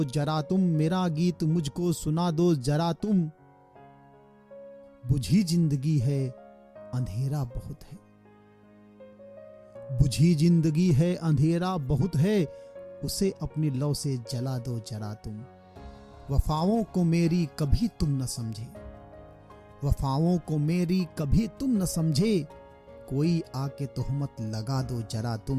जरा तुम, मेरा गीत मुझको सुना दो जरा तुम, बुझी जिंदगी है अंधेरा बहुत है, बुझी जिंदगी है अंधेरा बहुत है, उसे अपनी लौ से जला दो जरा तुम। वफाओं को मेरी कभी तुम न समझे, वफाओं को मेरी कभी तुम न समझे, कोई आके तोहमत लगा दो जरा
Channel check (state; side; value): identical; both; correlation 1.00